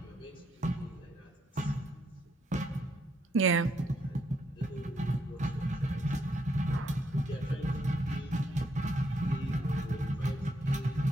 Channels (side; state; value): both; normal; correlation 0.75